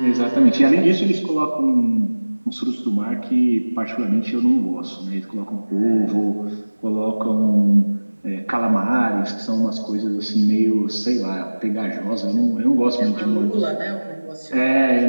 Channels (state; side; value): inverted; both; correlation -1.00